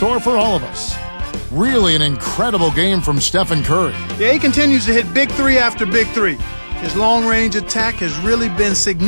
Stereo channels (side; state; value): both; inverted; correlation -1.00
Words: for all of us. Really an incredible game from Stephen Curry. Yeah, he continues to hit big three after big three. His long-range attack has really been